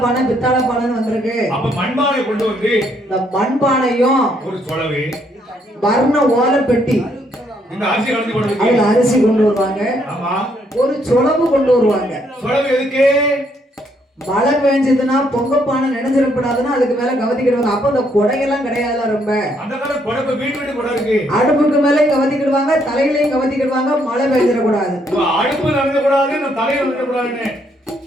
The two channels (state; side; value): normal; both; correlation 0.71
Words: பானை பித்தாள பானைன்னு வந்திருக்கு. அப்ப மண்பானை கொண்டு வந்து இந்த மண்பானையும் ஒரு சொலவு வர்ண ஓலை பெட்டி, இந்த அரிசி கலந்து போடுறது, அதுல அரிசி கொண்டு வருவாங்க. ஆமா. ஒரு சொலவு கொண்டு வருவாங்க. சொலவு எதுக்கு? மழை பெஞ்சதுன்னா பொங்கப்பானை நினைஞ்சிடப்படாதுன்னா அதுக்கு மேல கவதிக்கிடுவாங்க. அப்ப அந்த கொடையெல்லாம் கிடையாதுல. ரொம்ப அந்த காலம் கொடை வீட்டு கொடை இருக்கு, அடுப்புக்கு மேலே கவதிக்கிடுவாங்க, தலையிலையும் கவதிக்கிடுவாங்க. மழை பெஞ்சிடக்கூடாது, அடுப்பு நடக்கக்கூடாது, இந்த தலையில நடக்கக்கூடாதுன்னு.